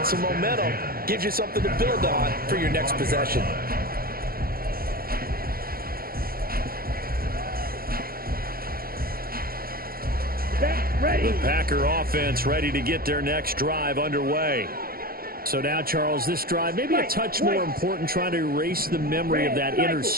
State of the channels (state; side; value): late; left; 0.43 ms